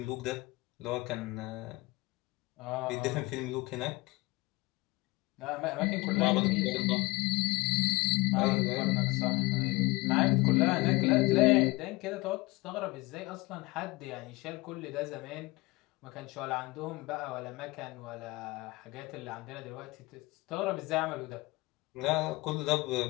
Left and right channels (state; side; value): quieter; right; 22.8 dB